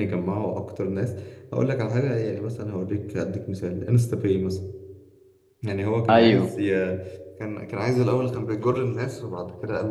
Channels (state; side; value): identical; both; correlation 1.00